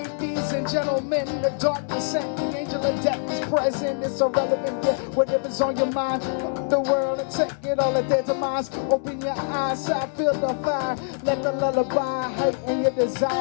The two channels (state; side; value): silent; right; digital silence